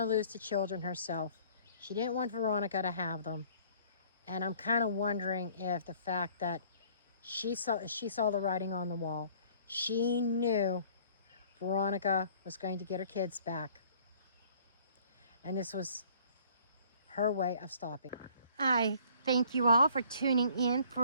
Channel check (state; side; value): inverted; both; correlation -0.56